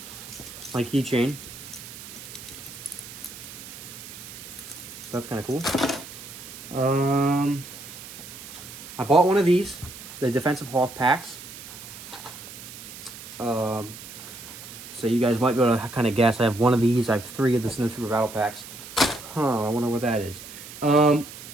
my keychain. So that's kind of cool. I bought one of these, the Defensive Hoth packs. So you guys might be able to kind of guess. I have one of these. I have 3 of the Snow Trooper battle packs. I wonder what that is. I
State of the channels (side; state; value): right; noise; hiss, 14 dB below the sound